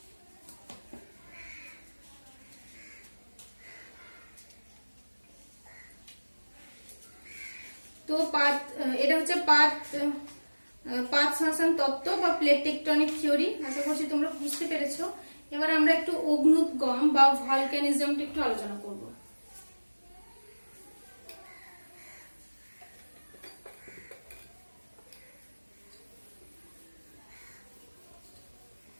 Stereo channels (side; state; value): both; inverted; correlation -1.00